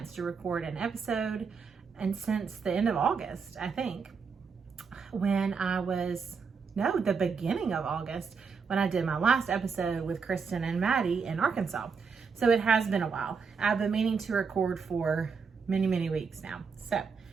to record an episode, and since the end of August, I think, the beginning of August, when I did my last episode with Kristen and Maddie in Arkansas. So it has been a while. I've been meaning to record for many weeks now. So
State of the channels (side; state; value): left; quieter; 5.5 dB